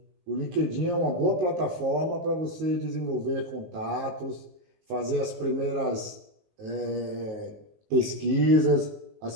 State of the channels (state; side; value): late; left; 19 ms